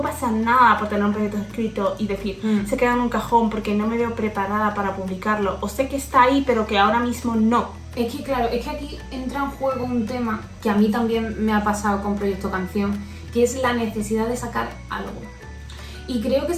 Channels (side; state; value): both; identical; correlation 1.00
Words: pasa nada por tener un proyecto escrito y decir, se queda en un cajón porque no me veo preparada para publicarlo, o sé que está ahí pero que ahora mismo no. Es que claro, es que aquí entra en juego un tema que a mí también me ha pasado con Proyecto Canción, que es la necesidad de sacar algo. Y creo que